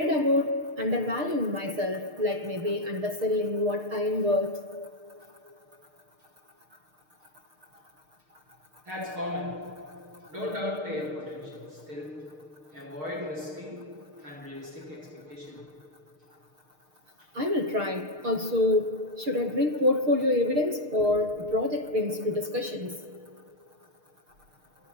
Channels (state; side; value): late; left; 6.5 ms